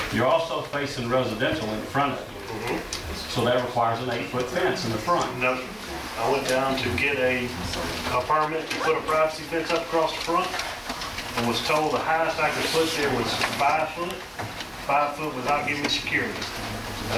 You're also facing residential in front of you. So that requires an 8-foot fence in the front. No, I went down to get a permit to put a privacy fence up across the front and was told the highest I could put there was 5 foot, 5 foot without giving me security. And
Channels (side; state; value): both; identical; correlation 1.00